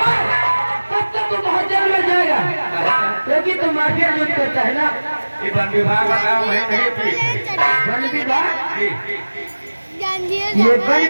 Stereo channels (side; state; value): both; inverted; correlation -1.00